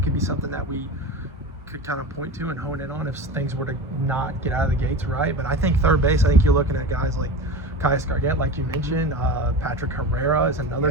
could be something that we could kind of point to and hone in on if things were to not get out of the gates right. But I think third base, I think you're looking at guys like Caius Gargett, like you mentioned, Patrick Herrera is another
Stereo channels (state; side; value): normal; both; correlation 0.28